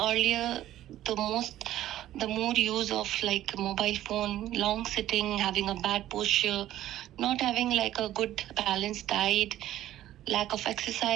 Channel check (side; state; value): left; quieter; 13.3 dB